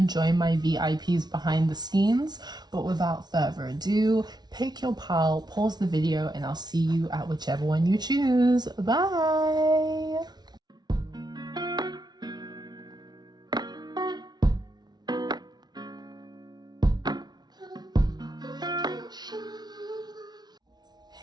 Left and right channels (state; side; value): late; left; 0.20 ms